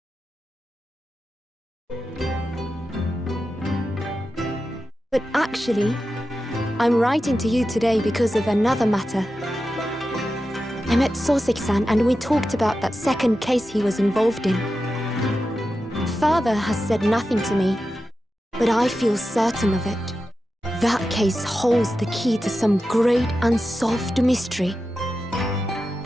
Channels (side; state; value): both; normal; correlation 0.91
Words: But actually, I'm writing to you today because of another matter. I met Soseki-san and we talked about that second case he was involved in. Father has said nothing to me, but I feel certain of it. That case holds the key to some great unsolved mystery.